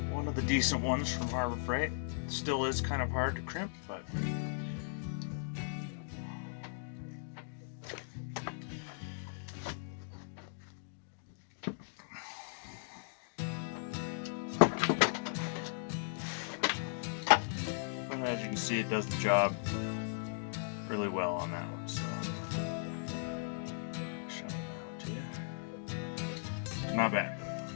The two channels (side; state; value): right; silent; digital silence